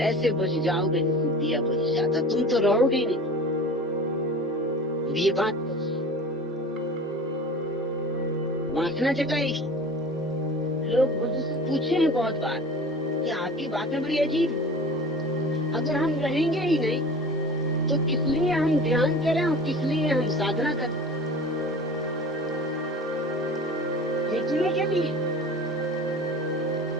बुझ जाओगे जैसे दिया बुझ जाता, तुम तो रहोगे ही नहीं। ये बात वासना जगाएगी। लोग बुद्ध से पूछे हैं बहुत बार कि आपकी बातें बड़ी अजीब है, अगर हम रहेंगे ही नहीं तो किस लिए हम ध्यान करें और किस लिए हम साधना करें? देखने के लिए,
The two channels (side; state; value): both; normal; correlation 0.38